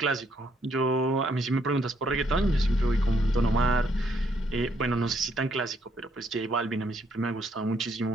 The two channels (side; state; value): both; normal; correlation 0.71